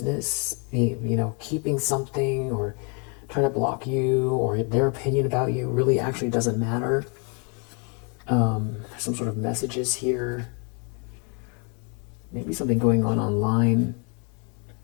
keeping something or trying to block you, or their opinion about you really actually doesn't matter. Some sort of messages here. Maybe something going on online.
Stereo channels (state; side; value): quieter; right; 36.3 dB